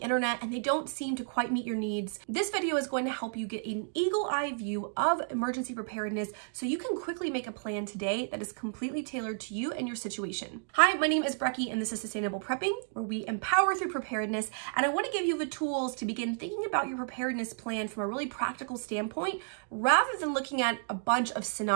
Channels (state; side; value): silent; left; digital silence